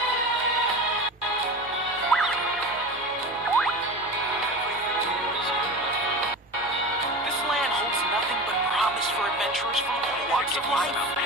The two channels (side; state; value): both; normal; correlation 0.30